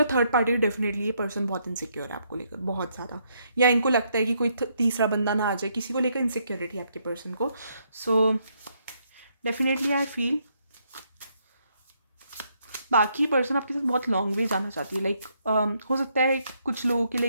थर्ड पार्टी, डेफिनेटली ये पर्सन बहुत इनसिक्योर है आपको लेकर, बहुत ज़्यादा। या इनको लगता है कि कोई तीसरा बंदा ना आ जाए, किसी को लेकर इनसिक्योरिटी है आपके पर्सन को। सो डेफिनेटली आई फील बाकी पर्सन आपके साथ बहुत लॉन्ग वे जाना चाहती है। लाइक हो सकता है कुछ लोगों के लिए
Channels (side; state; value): both; inverted; correlation -0.74